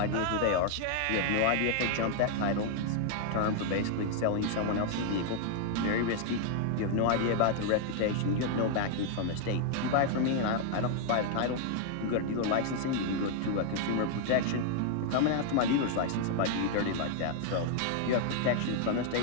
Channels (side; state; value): both; different; correlation 0.00